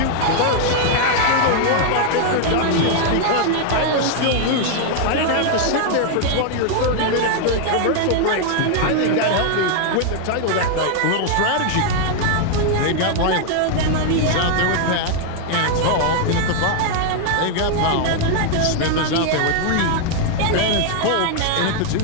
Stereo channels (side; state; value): both; different; correlation 0.00